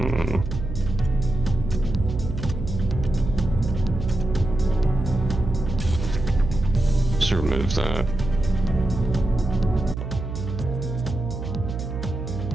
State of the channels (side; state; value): right; noise; hum, 6 dB below the sound